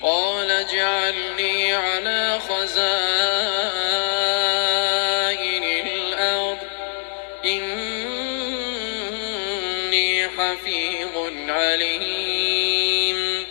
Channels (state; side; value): silent; right; digital silence